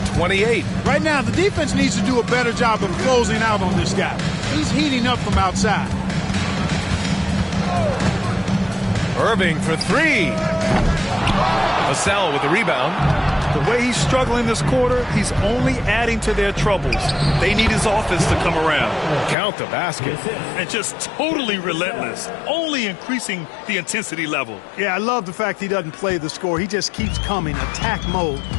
28. Right now, the defense needs to do a better job of closing out on this guy. He's heating up from outside. Irving for three. Vassell with the rebound. The way he's struggling this quarter, he's only adding to their troubles. They need his offense to come around. Count the basket. And just totally relentless, only increasing the intensity level. Yeah, I love the fact he doesn't play the score. He just keeps coming, attack mode.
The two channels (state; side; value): drops out; right; at 19.4 s